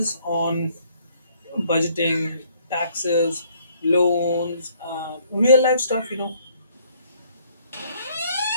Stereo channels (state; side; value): inverted; both; correlation -0.64